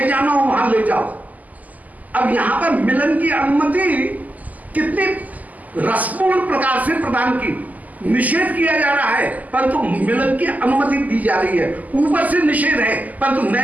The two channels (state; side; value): late; left; 0.079 ms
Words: जाना हो वहां ले जाओ। अब यहां पर मिलन की अनुमति कितनी रसपूर्ण प्रकार से प्रदान की, निषेध किया जा रहा है परंतु मिलन की अनुमति दी जा रही है। ऊपर से निषेध है परंतु